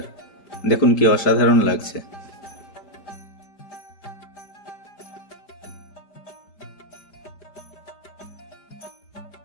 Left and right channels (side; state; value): right; late; 5.0 ms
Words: দেখুন কি অসাধারণ লাগছে।